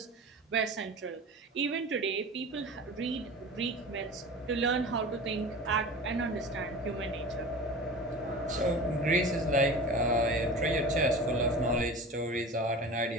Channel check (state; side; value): normal; both; correlation 0.35